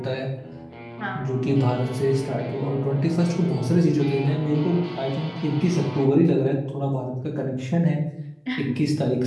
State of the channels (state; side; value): identical; both; correlation 1.00